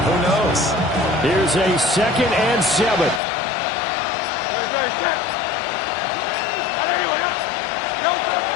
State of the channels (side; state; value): right; drops out; at 3.2 s